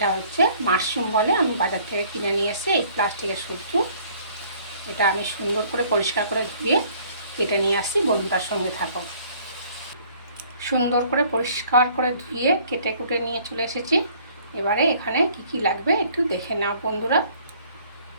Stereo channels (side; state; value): both; inverted; correlation -0.57